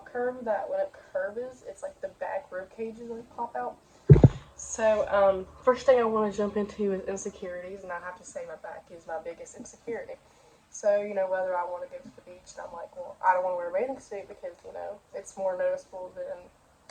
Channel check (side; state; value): both; identical; correlation 1.00